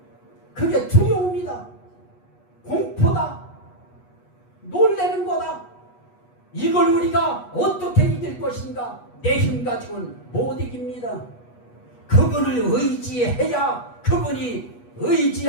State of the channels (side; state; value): right; late; 8.2 ms